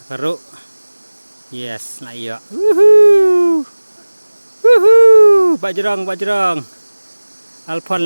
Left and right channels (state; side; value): inverted; both; correlation -1.00